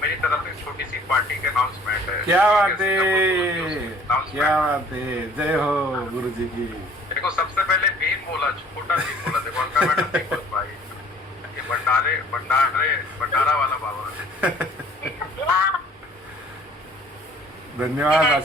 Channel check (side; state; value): both; normal; correlation 0.53